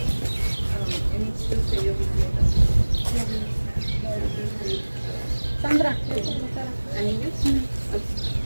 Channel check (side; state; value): both; inverted; correlation -1.00